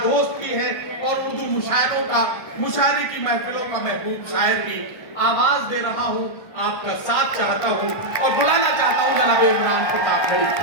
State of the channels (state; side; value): late; right; 1.6 ms